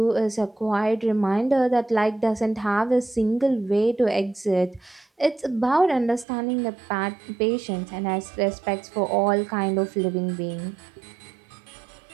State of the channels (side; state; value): left; drops out; at 6.2 s